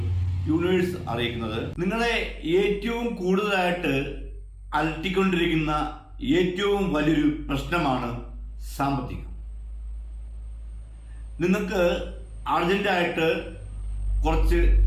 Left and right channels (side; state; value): both; identical; correlation 1.00